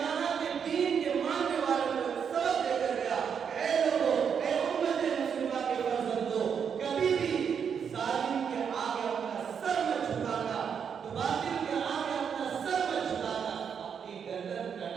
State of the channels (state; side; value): quieter; left; 7.2 dB